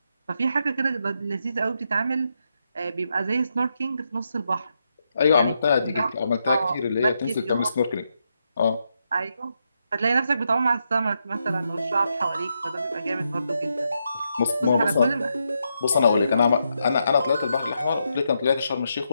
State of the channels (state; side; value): inverted; both; correlation -0.82